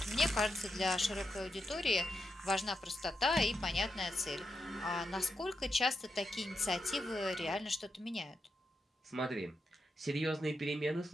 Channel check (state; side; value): normal; both; correlation 0.86